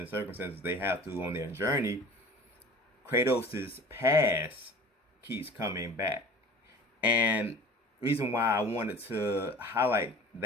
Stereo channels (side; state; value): both; normal; correlation 0.42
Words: circumstances they have to on their journey, Kratos' past keeps coming back. And reason why I wanted to highlight